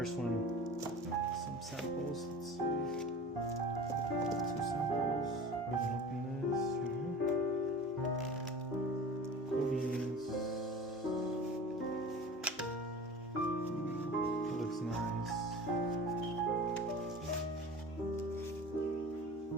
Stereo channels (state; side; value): normal; both; correlation 0.38